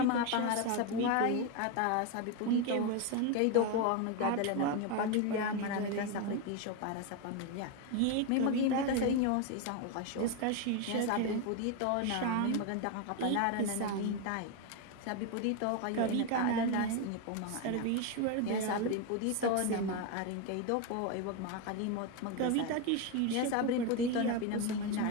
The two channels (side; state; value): both; different; correlation 0.02